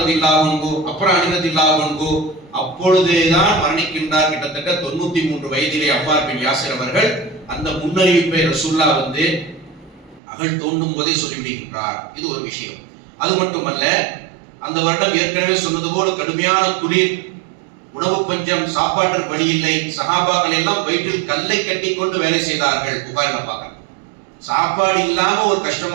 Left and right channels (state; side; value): drops out; left; at 10.2 s